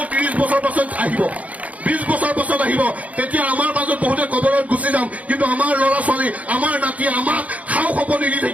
30 বছৰ পাছত আহিব, 20 বছৰ পাছত আহিব। তেতিয়া আমাৰ মাজত বহুতে কবৰত গুচি যাম, কিন্তু আমাৰ ল'ৰা ছোৱালী, আমাৰ নাতি আমাক খাও খপনি দি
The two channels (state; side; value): late; left; 0.069 ms